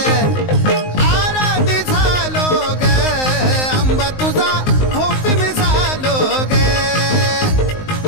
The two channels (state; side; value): late; right; 19 ms